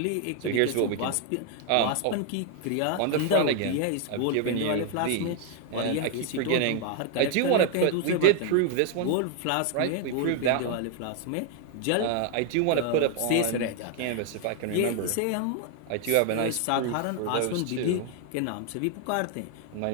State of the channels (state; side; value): different; both; correlation 0.00